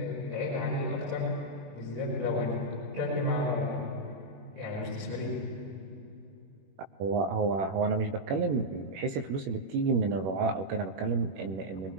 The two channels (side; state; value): left; late; 21 ms